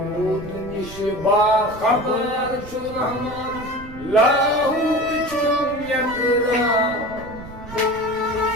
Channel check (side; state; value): right; noise; rumble, 15 dB below the sound